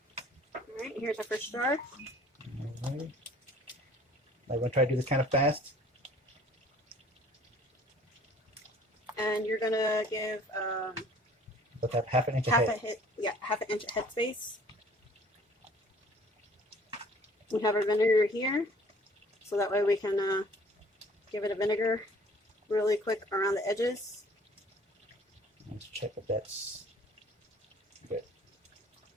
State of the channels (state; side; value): normal; both; correlation 0.53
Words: All right, here's our first jar. All right. I'm going to try to do this kind of fast. And you're going to give Let's have half an inch half ahead. an inch head space. We have our vinegar here, so that way we can give it a vinegar really quick around the edges. Let's check if that's good.